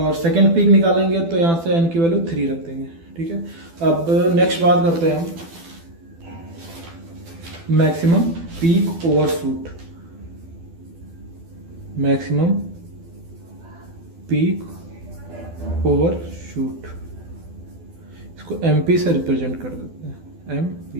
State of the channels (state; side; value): late; left; 12 ms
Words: सेकंड पीक निकालेंगे तो यहाँ से एन की वैल्यू 3 रख देंगे, ठीक है। अब नेक्स्ट बात करते हैं हम maximum peak overshoot, maximum peak overshoot, इसको एमपी से रिप्रेजेंट कर देते हैं,